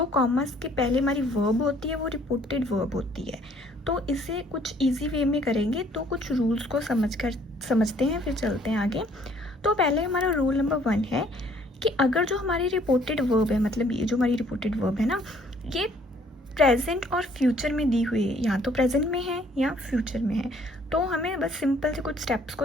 कॉमास के पहले हमारी वर्ब होती है वो रिपोर्टेड वर्ब होती है। तो इसे कुछ इजी वे में करेंगे, तो कुछ रूल्स को समझते हैं, फिर चलते हैं आगे। तो पहले हमारा रूल नंबर 1 है कि अगर जो हमारी रिपोर्टेड वर्ब है, मतलब ये जो हमारी रिपोर्टेड वर्ब है ना, ये प्रेजेंट और फ्यूचर में दी हुई है, या तो प्रेजेंट में है या फ्यूचर में है, तो हमें बस सिंपल से कुछ स्टेप्स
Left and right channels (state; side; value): normal; both; correlation 0.61